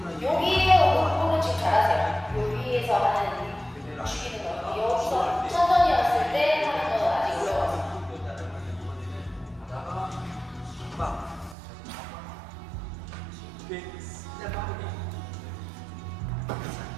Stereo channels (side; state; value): left; drops out; at 11.6 s